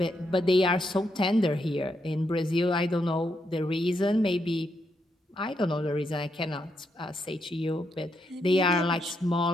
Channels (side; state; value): both; normal; correlation 0.80